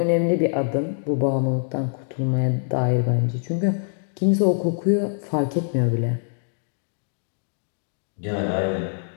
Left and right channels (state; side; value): silent; right; digital silence